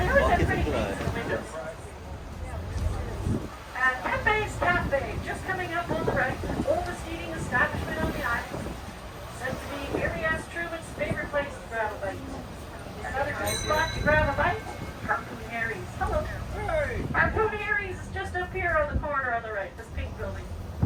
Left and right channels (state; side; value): identical; both; correlation 1.00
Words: always have pretty things in the windows. Pepe's Cafe, just coming up on the right, oldest eating establishment on the island. Said to be Mary S. Truman's favorite place to grab a bite. Another good spot to grab a bite? Harpoon Harry's. Hello. Hey. Harpoon Harry's is just up here on the corner on the right, this pink building,